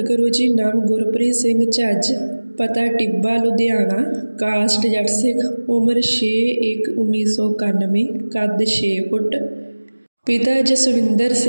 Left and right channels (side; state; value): both; inverted; correlation -1.00